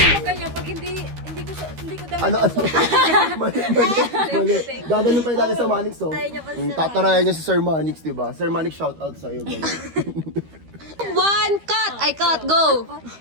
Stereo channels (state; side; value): late; left; 13 ms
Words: ganyan, pag hindi ko damit. Ano? Mali. Gaganon pa yung dati sa Manix, oh. Tatarayan niya si Sir Manix, diba? Sir Manix, shout out sa'yo. One, cut! Ay, cut, go!